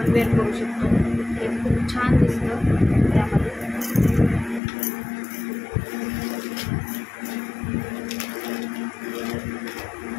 वेअर करू शकतो. हे खूप छान दिसतं त्यामध्ये.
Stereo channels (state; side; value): drops out; right; at 4.6 s